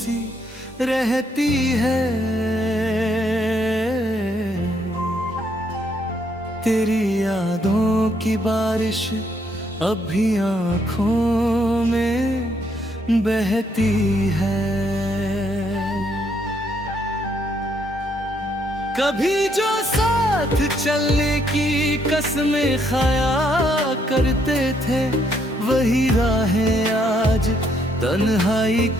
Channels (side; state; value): both; normal; correlation 0.72